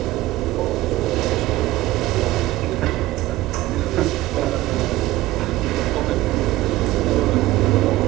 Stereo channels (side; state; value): left; quieter; 17.0 dB